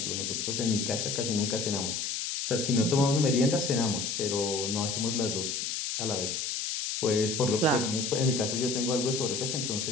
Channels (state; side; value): noise; left; hiss, 2 dB below the sound